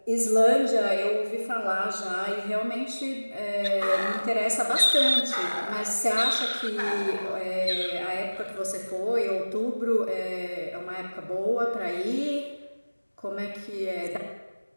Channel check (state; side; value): inverted; both; correlation -1.00